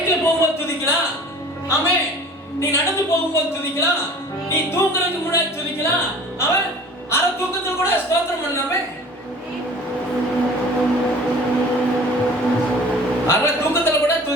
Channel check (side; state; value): both; normal; correlation 0.45